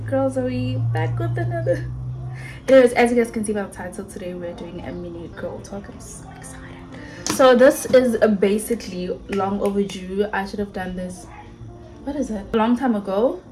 Zoe back with another. Anyways, as you guys can see by the title, today we're doing a mini girl talk. I'm so excited. So this is basically long overdue. I should have done this, what is it, a long time ago.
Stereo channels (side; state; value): both; identical; correlation 1.00